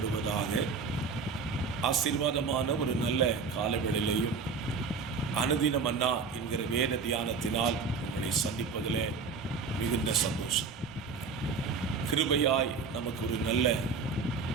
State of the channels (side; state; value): left; quieter; 4.9 dB